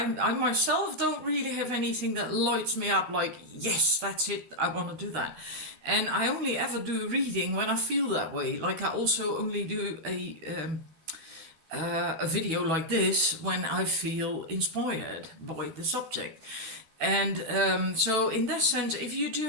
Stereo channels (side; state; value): left; late; 13 ms